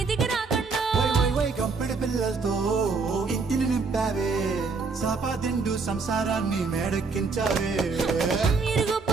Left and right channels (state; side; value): quieter; left; 4.5 dB